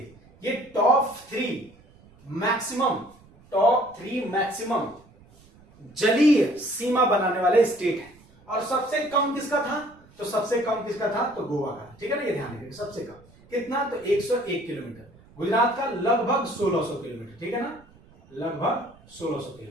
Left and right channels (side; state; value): right; noise; rumble, 27 dB below the sound